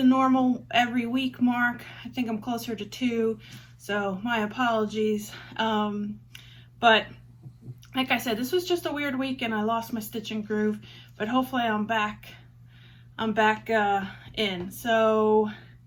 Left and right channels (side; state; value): both; identical; correlation 1.00